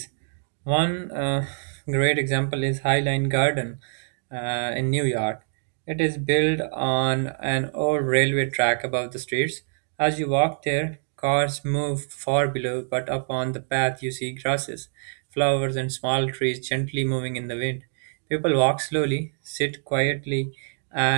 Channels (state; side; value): silent; left; digital silence